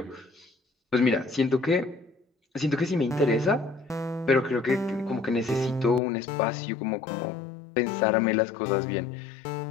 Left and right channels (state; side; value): drops out; right; at 6.0 s